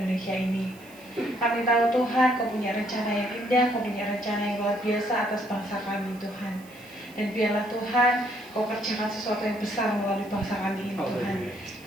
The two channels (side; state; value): right; noise; hiss, 24 dB below the sound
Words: ini. Kami tahu Tuhan, Kau punya rencana yang indah, Kau punya rencana yang luar biasa atas bangsa kami Tuhan. Dan biarlah Tuhan, Kau kerjakan sesuatu yang besar melalui bangsa kami ini Tuhan.